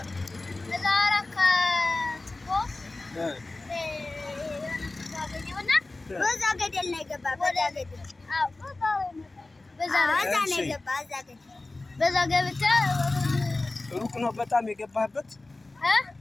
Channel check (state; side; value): quieter; right; 3.1 dB